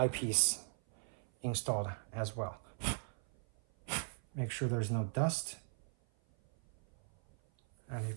installed as well. Make sure there's no dust. And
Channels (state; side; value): silent; left; 52 dB below the other